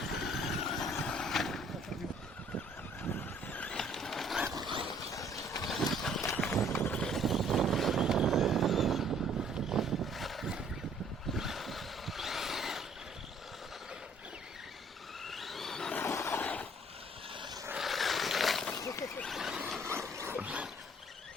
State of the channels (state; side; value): normal; both; correlation 0.60